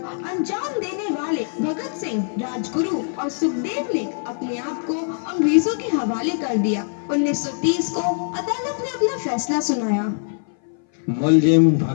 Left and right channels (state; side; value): silent; right; 59 dB below the other